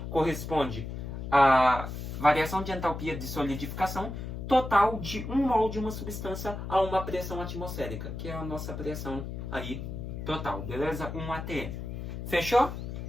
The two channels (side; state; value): left; noise; hum, 7 dB below the sound